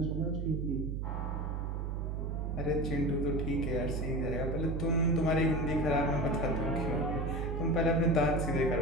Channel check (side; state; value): right; noise; hum, 2 dB below the sound